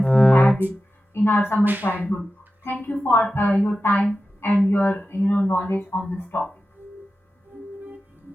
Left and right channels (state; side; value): normal; both; correlation 0.93